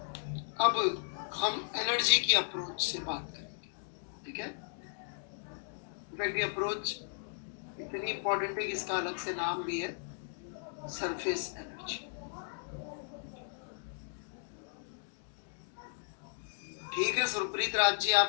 अब हम एनर्जी की अप्रोच से बात करेंगे, ठीक है? इनफैक्ट ये अप्रोच इतनी इंपॉर्टेंट है कि इसका अलग से नाम भी है, सरफेस एनर्जी। ठीक है सुरप्रीत राज जी,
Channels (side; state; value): right; silent; digital silence